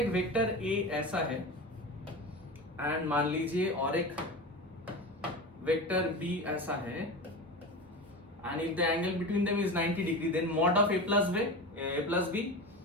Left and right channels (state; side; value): normal; both; correlation 0.26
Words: वेक्टर ए ऐसा है एंड मान लीजिए और एक वेक्टर बी ऐसा है and if the angle between them is 90 degree then mod of A plus B.